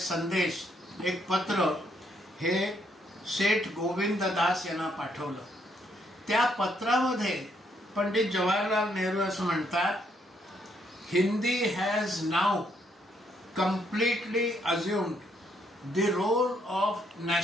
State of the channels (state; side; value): normal; both; correlation 0.72